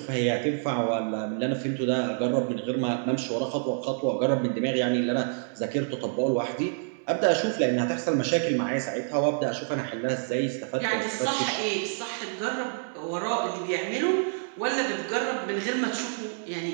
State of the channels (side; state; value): left; silent; 60 dB below the other